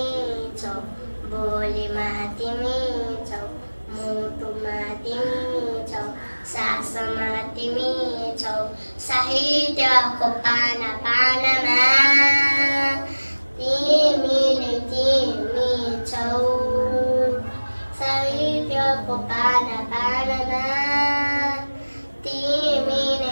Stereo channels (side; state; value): both; inverted; correlation -1.00